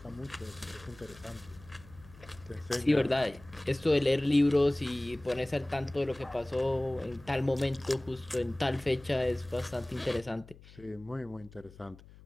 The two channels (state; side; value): noise; left; hum, 21 dB below the sound